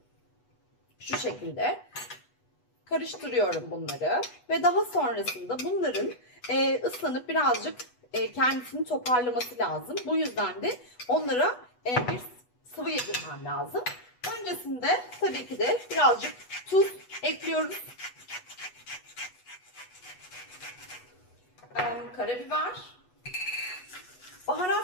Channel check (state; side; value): late; right; 8.2 ms